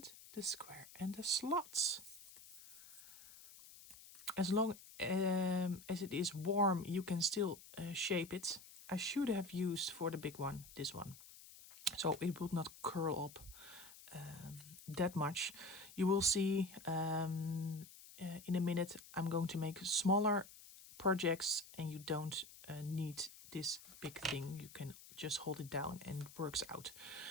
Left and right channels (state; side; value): noise; left; hiss, 18 dB below the sound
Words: the square, and the slots. As long as it is warm, you can still shape it. I should have used for the big one, this one. So it would not curl up that much. You will see in a minute I'm going to make smaller projects and you don't need this big thing. You can just hold it down and it works out.